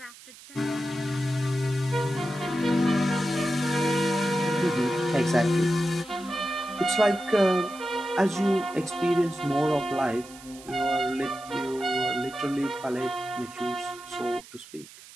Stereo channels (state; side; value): noise; right; hiss, 19 dB below the sound